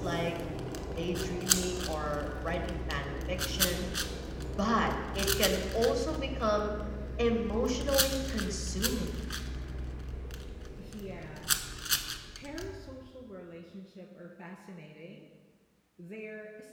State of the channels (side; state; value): both; identical; correlation 1.00